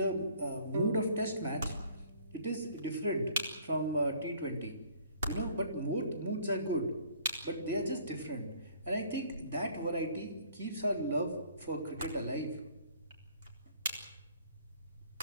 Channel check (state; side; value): inverted; both; correlation -0.56